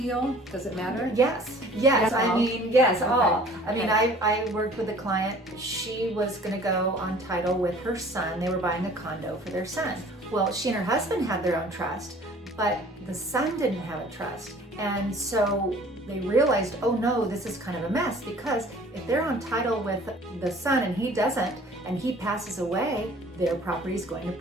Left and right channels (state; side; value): normal; both; correlation 0.50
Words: Does it matter? Yes. I mean, yes, Okay. all. I mean, I worked with a client. She was going to go on title with her son. They were buying a condo for their son. Well, she and her husband had their own trust, but the son didn't have a trust. And so they realized, oh no, this is kind of a mess, because if they're on title with the son and he doesn't, and he passes away, their property is going to